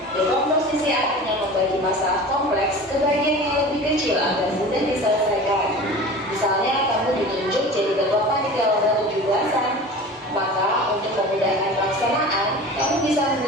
Dekomposisi artinya membagi masalah kompleks ke bagian yang lebih kecil agar mudah diselesaikan. Misalnya, kamu ditunjuk jadi ketua panitia lomba 17-an. Maka, untuk memudahkan pelaksanaan, kamu bisa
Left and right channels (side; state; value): both; normal; correlation 0.37